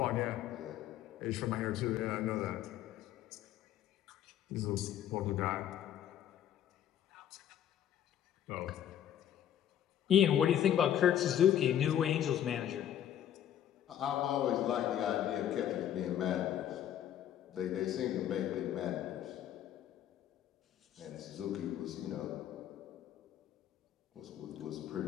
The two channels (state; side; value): quieter; right; 10.7 dB